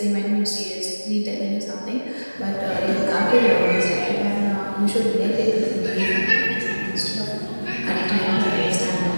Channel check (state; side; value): inverted; both; correlation -1.00